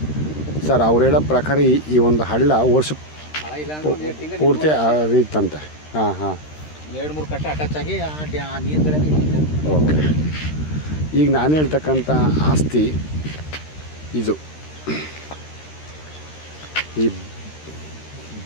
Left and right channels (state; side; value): late; right; 13 ms